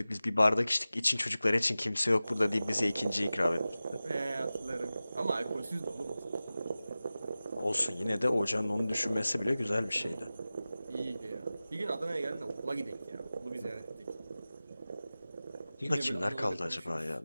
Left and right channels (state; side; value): inverted; both; correlation -0.96